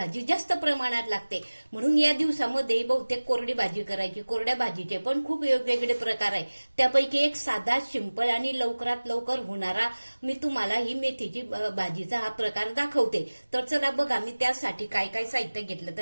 जास्त प्रमाणात लागते. म्हणून या दिवसामध्ये बहुतेक कोरडी भाजी करायची. कोरड्या भाजीचे पण खूप वेगवेगळे प्रकार आहे. त्यापैकी एक साधा, सिंपल आणि लवकरात लवकर होणारा मी तुम्हाला ही मेथीची भाजीचा हा प्रकार दाखवते. तर चला बघा, मी त्यासाठी काय काय साहित्य घेतलं.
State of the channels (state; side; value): inverted; both; correlation -1.00